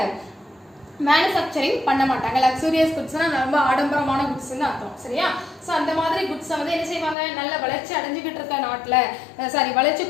மேனுஃபேக்சரிங் பண்ண மாட்டாங்க. லக்ஸூரியஸ் குட்ஸ்னா ரொம்ப ஆடம்பரமான குட்ஸ்னு அர்த்தம். சரியா? ஸோ அந்த மாதிரி குட்ஸை வந்து என்ன செய்வாங்க, நல்ல வளர்ச்சி அடைஞ்சிக்கிட்டு இருக்க நாட்டில், சாரி வளர்ச்சி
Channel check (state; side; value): drops out; right; at 7.2 s